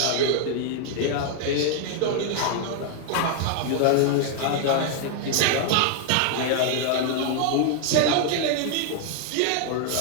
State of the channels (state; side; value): different; both; correlation 0.00